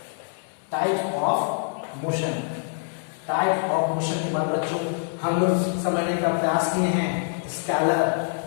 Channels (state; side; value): silent; right; digital silence